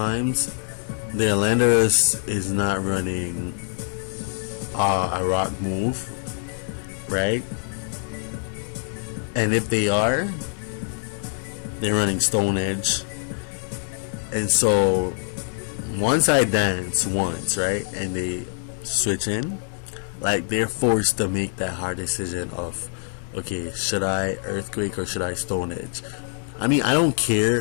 their Landorus is not running a rock move, right? And if they are, they're running Stone Edge. And so once I dance once, right, and they switch in, like they're forced to make that hard decision of, okay, should I Earthquake or should I Stone Edge? I mean, I don't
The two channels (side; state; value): right; silent; digital silence